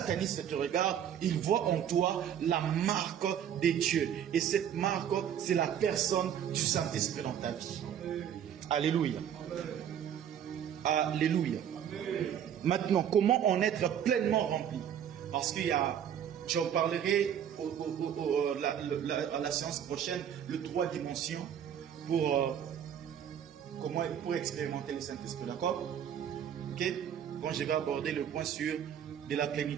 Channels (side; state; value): left; quieter; 9.3 dB